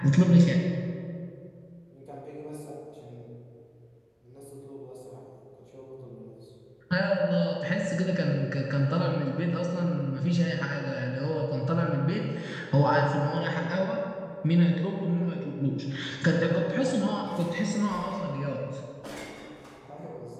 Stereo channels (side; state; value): both; identical; correlation 1.00